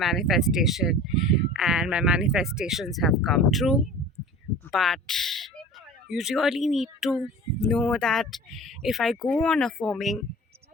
and my manifestations have come true. But you really need to know that if I go on affirming,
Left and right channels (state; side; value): normal; both; correlation 0.40